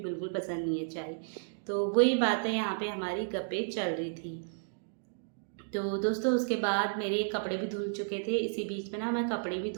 पसंद नहीं है चाय। तो वही बातें यहाँ पे हमारी गप्पे चल रही थी। तो दोस्तों उसके बाद मेरे कपड़े भी धुल चुके थे, इसी बीच में ना मैं कपड़े भी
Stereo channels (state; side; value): silent; left; digital silence